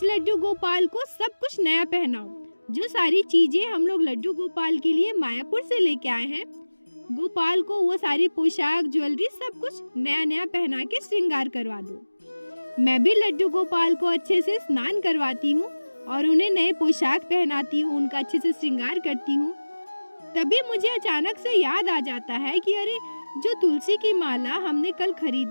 लड्डू गोपाल को सब कुछ नया पहनाओ। जो सारी चीजें हम लोग लड्डू गोपाल के लिए मायापुर से लेके आए हैं, गोपाल को वो सारी पोशाक, ज्वेलरी, सब कुछ नया नया पहना के श्रृंगार करवा दो। मैं भी लड्डू गोपाल को अच्छे से स्नान करवाती हूँ और उन्हें नए पोशाक पहनाती हूँ, उनका अच्छे से श्रृंगार करती हूँ। तभी मुझे अचानक से याद आ जाता है कि अरे, जो तुलसी की माला हमने कल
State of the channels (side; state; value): both; inverted; correlation -1.00